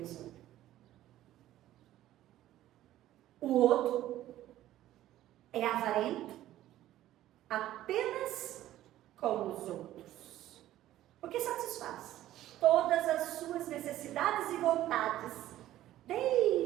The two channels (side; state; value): left; quieter; 13.8 dB